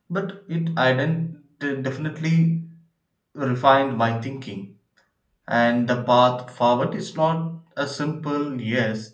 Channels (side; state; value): both; identical; correlation 1.00